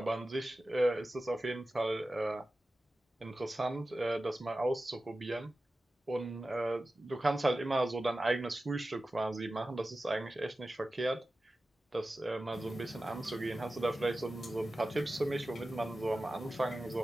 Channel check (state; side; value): normal; both; correlation 0.94